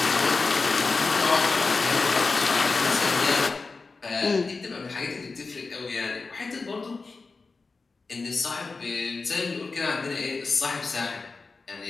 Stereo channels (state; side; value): quieter; right; 4.1 dB